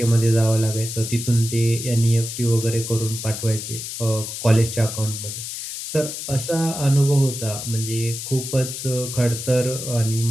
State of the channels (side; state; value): left; noise; hiss, 7 dB below the sound